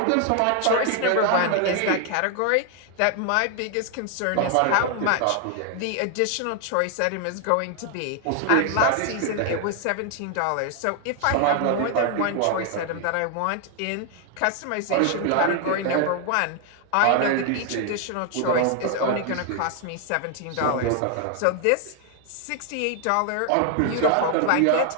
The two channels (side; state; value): both; different; correlation 0.00